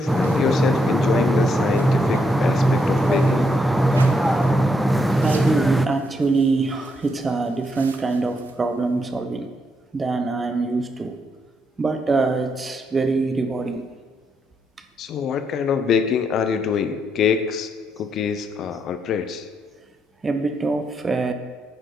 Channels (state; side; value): normal; both; correlation 0.79